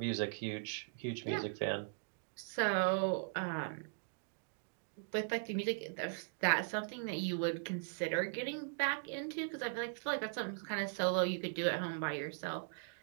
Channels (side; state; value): left; silent; digital silence